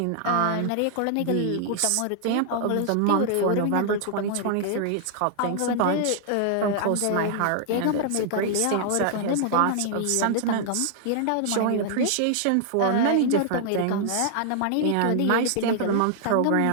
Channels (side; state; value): both; different; correlation -0.01